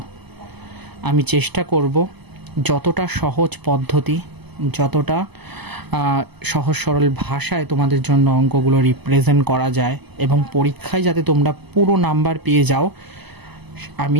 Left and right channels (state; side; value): late; left; 0.99 ms